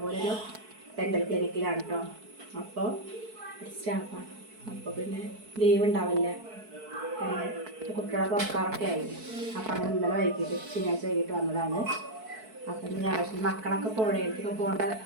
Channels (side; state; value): left; late; 4.6 ms